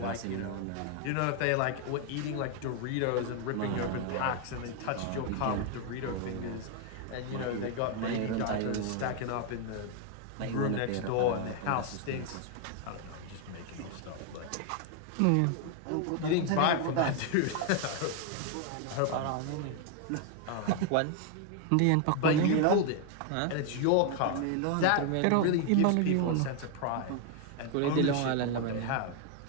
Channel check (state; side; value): different; both; correlation 0.00